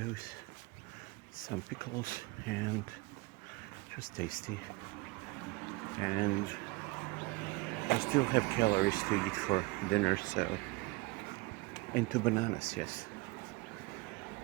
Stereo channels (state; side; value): quieter; left; 23.7 dB